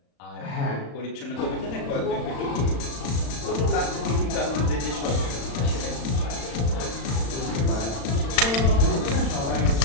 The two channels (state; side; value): late; right; 36 ms